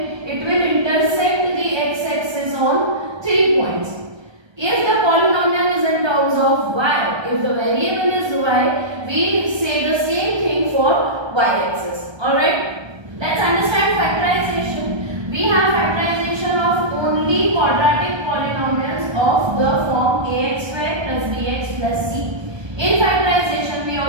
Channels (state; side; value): late; left; 1.3 ms